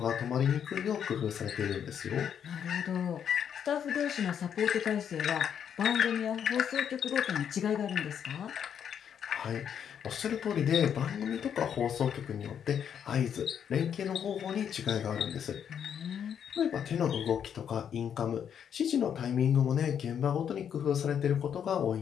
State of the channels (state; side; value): quieter; right; 8.4 dB